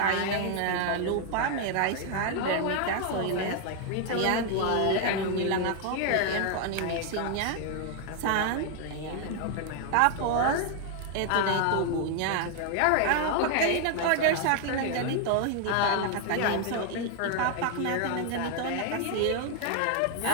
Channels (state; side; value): different; both; correlation 0.00